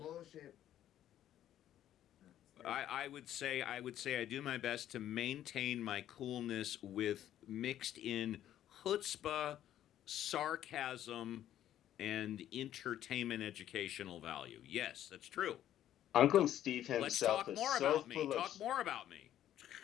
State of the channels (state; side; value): quieter; right; 11.7 dB